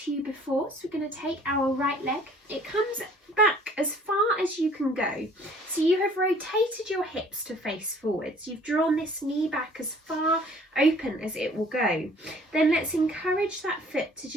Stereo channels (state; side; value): normal; both; correlation 0.55